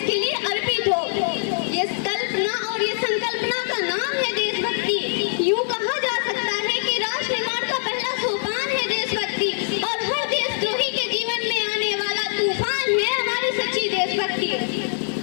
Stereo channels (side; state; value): right; silent; 63 dB below the other